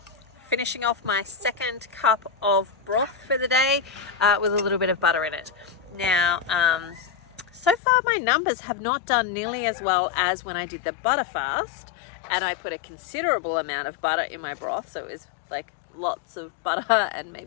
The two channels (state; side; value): drops out; right; at 7.8 s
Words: finishing off my second cup of broth for the day with a little bit of butter in it. Now, so far my numbers have not done nearly as well as when I did the butter fast, and I put a considerable amount of butter in my broth, so it was like lots of butter and